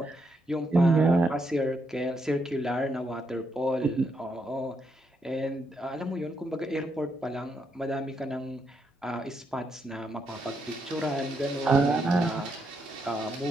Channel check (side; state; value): both; normal; correlation 0.79